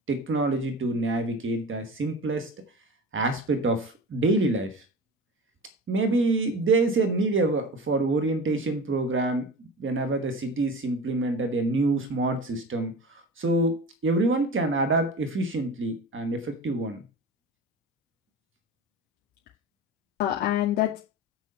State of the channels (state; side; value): normal; both; correlation 0.33